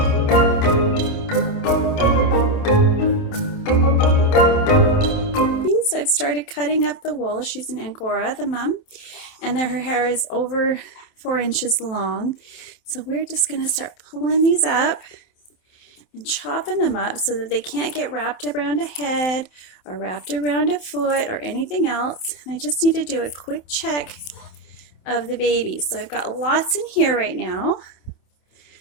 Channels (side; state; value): right; late; 28 ms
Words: So I've started cutting up the wool. She's an Angora, the mom, and her hair is over 4 inches long. So we're just going to start pulling these up and chopping them up so that they can't get wrapped around a head or wrapped around a foot or anything else. And I just need to do a quick check of the babies. So I've got lots in here right now.